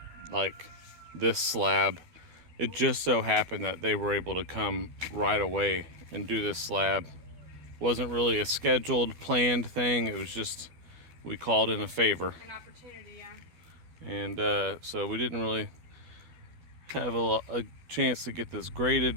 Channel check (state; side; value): late; left; 12 ms